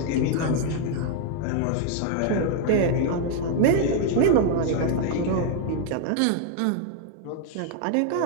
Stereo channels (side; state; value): both; different; correlation 0.00